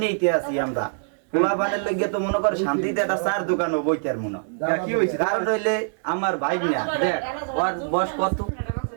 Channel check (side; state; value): left; silent; digital silence